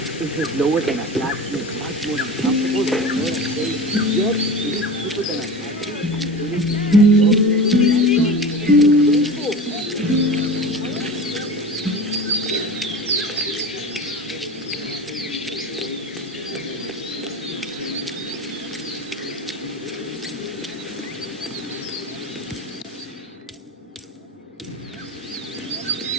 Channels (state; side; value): normal; both; correlation 0.31